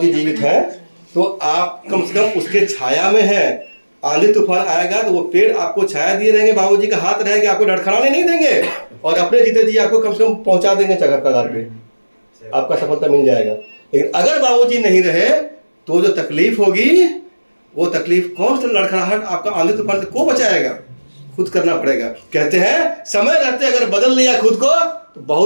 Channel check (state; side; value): inverted; both; correlation -1.00